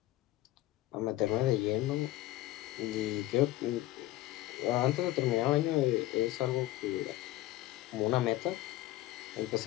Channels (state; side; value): quieter; right; 16.0 dB